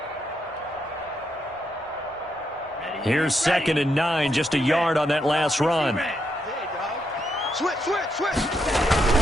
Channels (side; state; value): both; normal; correlation 0.80